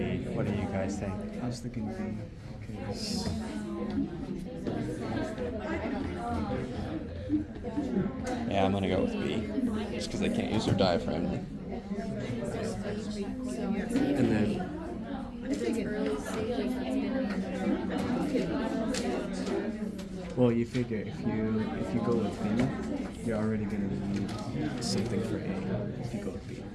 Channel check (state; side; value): identical; both; correlation 1.00